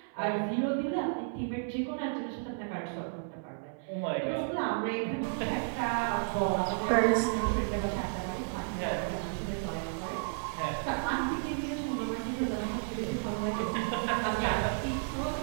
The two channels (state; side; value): silent; left; 56 dB below the other